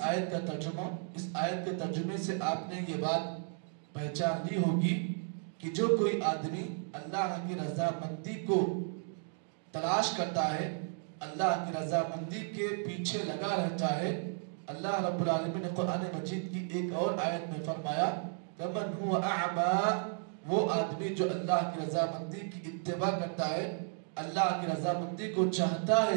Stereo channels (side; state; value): left; silent; 55 dB below the other